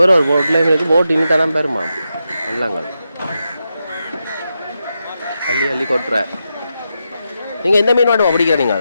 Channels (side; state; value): both; inverted; correlation -0.87